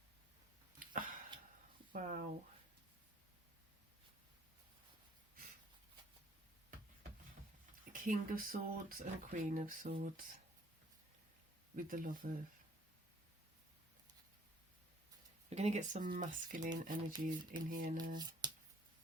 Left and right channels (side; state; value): both; normal; correlation 0.59